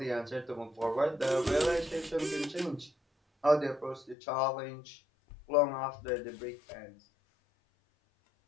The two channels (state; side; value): drops out; right; at 4.2 s